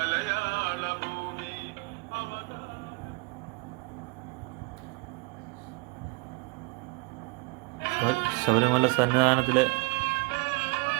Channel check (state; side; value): quieter; left; 28.4 dB